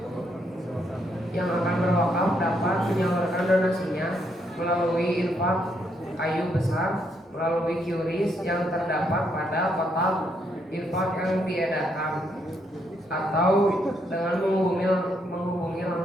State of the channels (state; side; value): normal; both; correlation 0.75